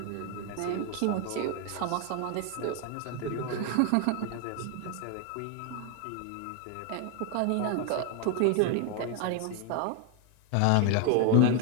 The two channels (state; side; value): different; both; correlation 0.01